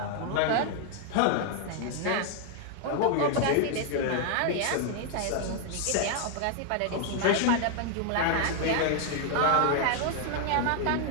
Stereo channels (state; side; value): different; both; correlation 0.00